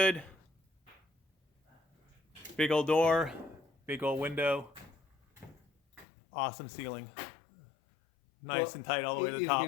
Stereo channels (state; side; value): drops out; right; at 6.1 s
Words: Big old door, big old window. Awesome ceiling. Nice and tight all the way to the It's top.